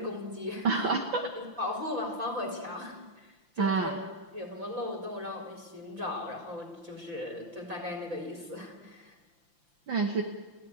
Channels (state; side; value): late; left; 5.8 ms